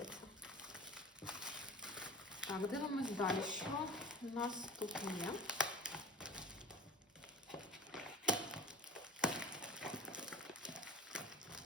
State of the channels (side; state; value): both; normal; correlation 0.39